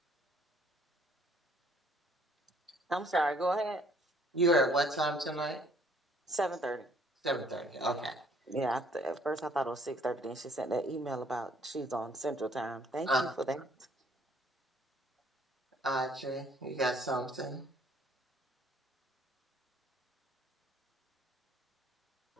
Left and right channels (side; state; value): both; normal; correlation 0.61